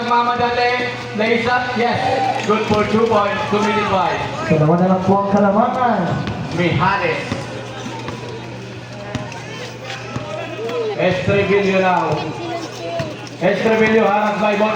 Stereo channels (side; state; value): both; identical; correlation 1.00